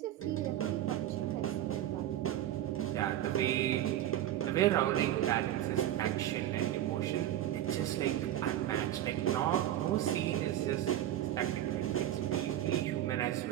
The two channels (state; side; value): quieter; left; 12.5 dB